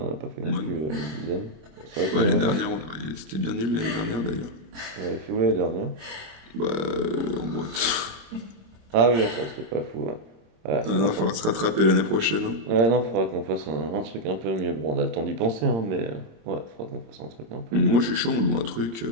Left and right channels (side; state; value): left; late; 26 ms